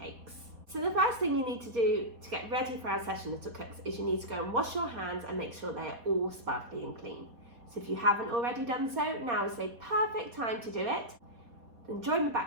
So the first thing you need to do to get ready for our session, little cooks, is you need to go and wash your hands and make sure they are all sparkly and clean. So if you haven't already done so, now is the perfect time to do it. Then join me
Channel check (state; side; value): late; left; 4.2 ms